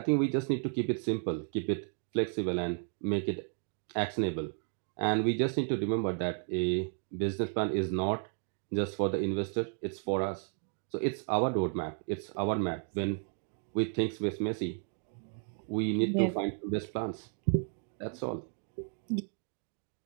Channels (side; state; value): left; silent; 56 dB below the other